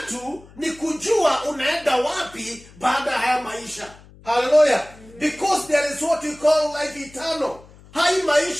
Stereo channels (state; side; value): noise; left; hum, 23 dB below the sound